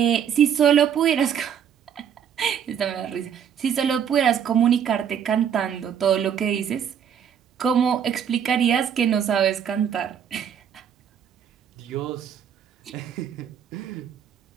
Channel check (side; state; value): left; quieter; 8.4 dB